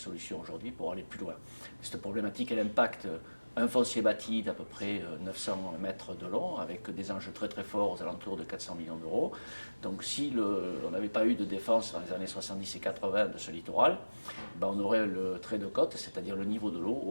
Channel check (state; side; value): inverted; both; correlation -1.00